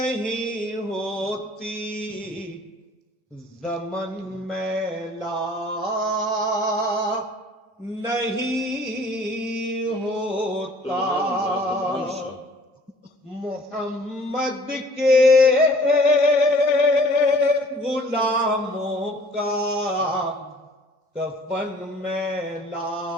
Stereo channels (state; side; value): normal; both; correlation 0.53